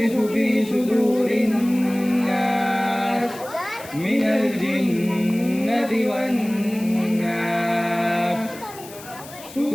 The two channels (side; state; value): left; noise; hiss, 17 dB below the sound